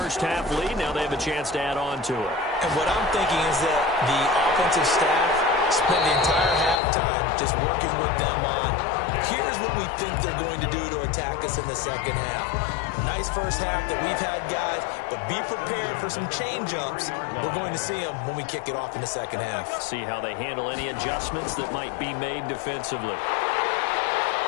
lead. Now they have a chance to add on to it. And what I'm thinking is that the offensive staff spent the entire halftime just working with them on, here's what we think they're going to do to attack us in the second half. Nice first half that we've had, guys, but be prepared for some change-ups. We're going to see them when we kick it off in the second half. See how they handle any adjustments that might be made defensively.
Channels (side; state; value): right; drops out; at 6.8 s